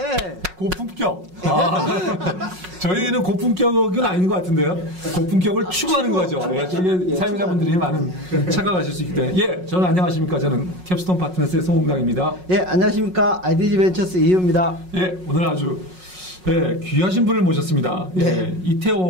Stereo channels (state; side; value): late; left; 5.5 ms